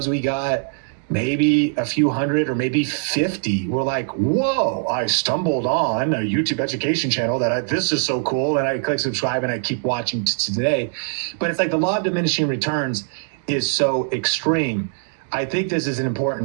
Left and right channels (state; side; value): silent; left; digital silence